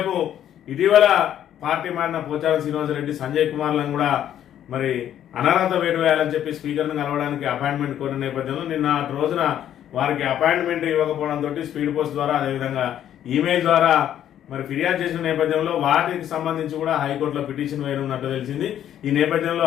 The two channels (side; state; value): right; quieter; 10.8 dB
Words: ఇటీవల పార్టీ మారిన పోచారం శ్రీనివాసరెడ్డి, సంజయ్ కుమార్లను కూడా మరి అనర్హత వేటు వేయాలని చెప్పి స్పీకర్ను కలవడానికి అపాయింట్మెంట్ కోరిన నేపథ్యంలో నిన్న రోజున వారికి అపాయింట్మెంట్ ఇవ్వకపోవడంతో స్పీడ్ పోస్ట్ ద్వారా అదేవిధంగా ఈమెయిల్ ద్వారా మరి ఫిర్యాదు చేసిన నేపథ్యంలో వాటికి సంబంధించి కూడా హైకోర్టులో పిటిషన్ వేయనున్నట్టు తెలిసింది. ఈ నేపథ్యంలో